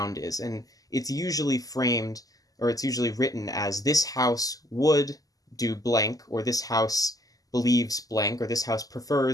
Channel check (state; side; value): late; right; 0.17 ms